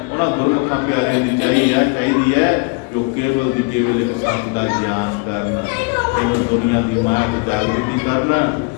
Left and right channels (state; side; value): quieter; right; 29.4 dB